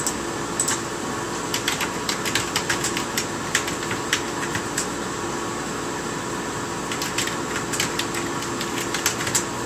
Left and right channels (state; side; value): identical; both; correlation 1.00